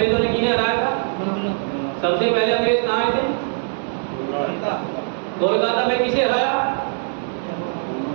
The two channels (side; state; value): left; silent; 65 dB below the other